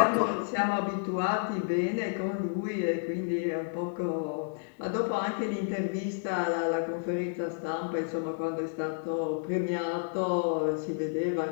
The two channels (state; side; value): silent; right; 57 dB below the other